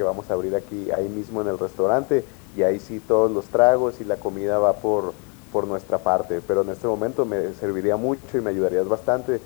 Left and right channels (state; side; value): quieter; right; 36.0 dB